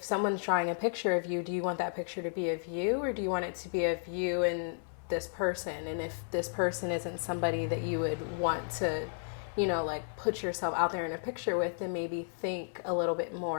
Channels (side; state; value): right; silent; 56 dB below the other